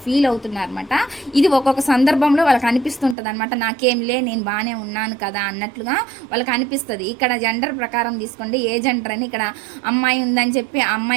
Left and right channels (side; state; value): left; drops out; at 3.2 s